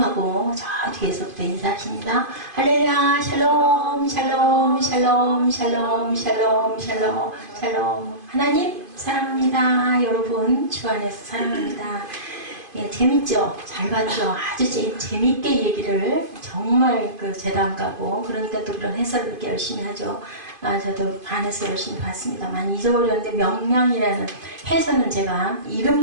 하고 저 뒤에서부터 인사하십니다. 할렐루야 샬롬 샬롬 샬롬 샬롬 샬롬 샬롬 샬롬. 하나님 사랑합니다. 여러분 주 안에서 사랑합니다. 예, 재밌죠? 잘 봤죠? 아주 재밌게 얘기를 정말 재단 가고 그러니까 또 그런 해설을 이렇게 열심히 하죠. 저도 안에서 열심히 봤습니다. 많이 잊어버렸는데 명량이라는 해설은 제가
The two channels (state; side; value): late; left; 2.5 ms